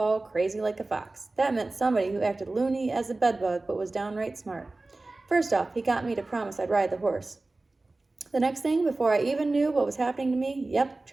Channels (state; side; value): quieter; left; 3.1 dB